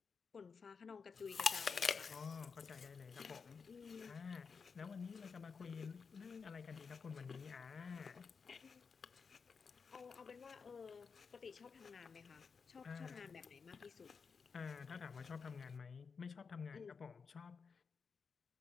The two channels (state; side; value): quieter; right; 5.5 dB